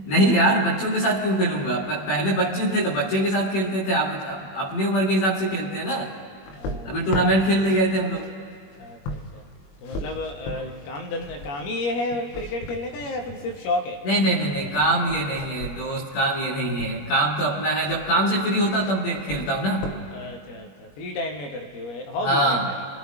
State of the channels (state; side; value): late; right; 21 ms